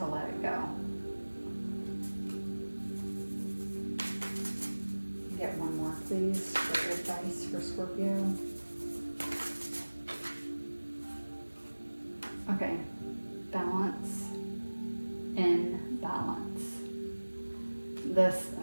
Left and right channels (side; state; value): both; inverted; correlation -1.00